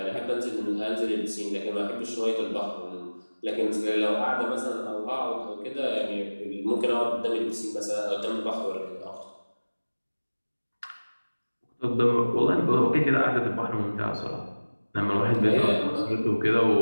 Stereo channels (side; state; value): both; inverted; correlation -1.00